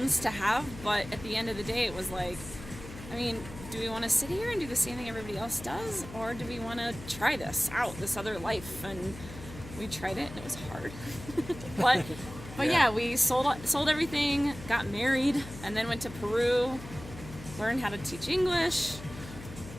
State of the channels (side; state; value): left; noise; hum, 13 dB below the sound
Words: to have, but at the end of the day, it was like, I mean, do we want to sit here and do the same thing everybody else does, or do we want to try this out, this other life? And we tried it, and it was hard. but yeah, we sold everything, got married, and then went to Peru, learned how to teach English,